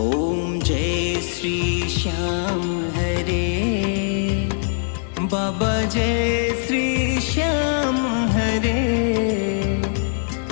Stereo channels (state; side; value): silent; right; digital silence